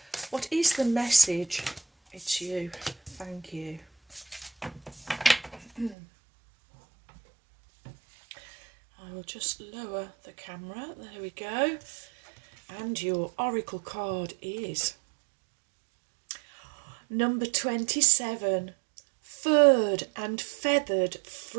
What is the message? It's you. Thank you. I will just lower the camera. There we go. And your oracle card is number 27. Furred and feathered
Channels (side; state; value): left; drops out; at 6.0 s